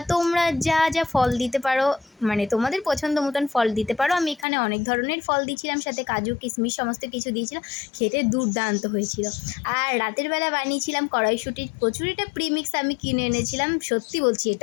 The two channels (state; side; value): drops out; right; at 4.5 s